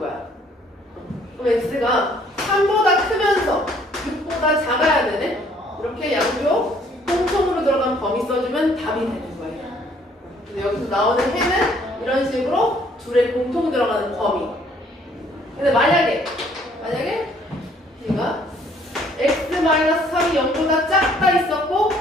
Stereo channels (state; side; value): normal; both; correlation 0.62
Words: 그럼 x가 3보다 크면서 6보다 작아야 되네? 이렇게 양쪽 공통으로 들어간 범위 써주면 답이 되는 거예요. 그래서 여기서 나오는 해는 이런 식으로 둘의 공통 들어가는 범위. 근데 만약에 얘가 x-3이 0보다 작다 있었고